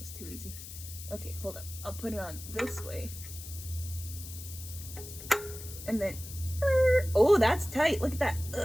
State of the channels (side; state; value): left; noise; hiss, 12 dB below the sound